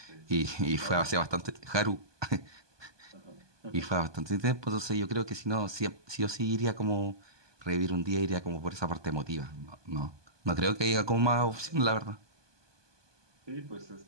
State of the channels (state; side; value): late; left; 1.2 ms